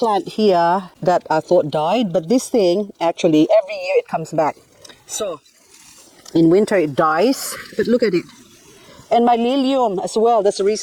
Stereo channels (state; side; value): identical; both; correlation 1.00